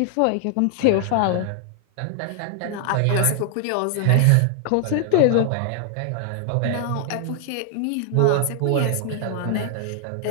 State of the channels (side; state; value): both; different; correlation 0.00